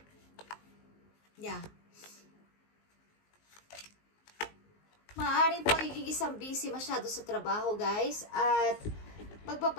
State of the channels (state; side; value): late; right; 19 ms